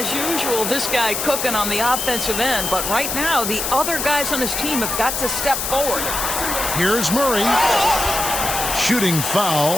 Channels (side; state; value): left; noise; hiss, 2 dB below the sound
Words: usual, this guy cooking on the offensive end. But right now, the other guys on his team have got to step forward. Here's Murray. Shooting foul